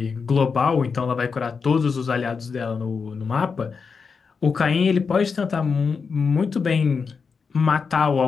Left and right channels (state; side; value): quieter; right; 5.4 dB